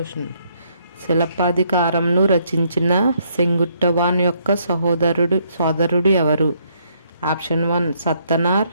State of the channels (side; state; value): both; inverted; correlation -0.71